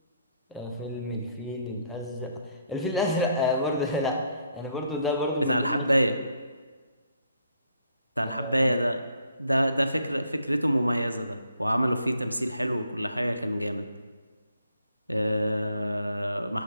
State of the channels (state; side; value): inverted; both; correlation -0.70